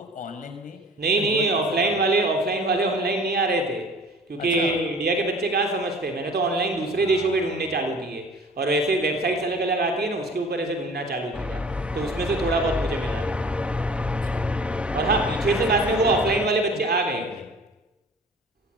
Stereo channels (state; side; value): normal; both; correlation 0.46